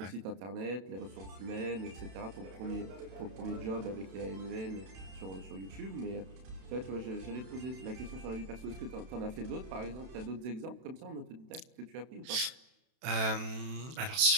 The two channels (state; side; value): late; left; 32 ms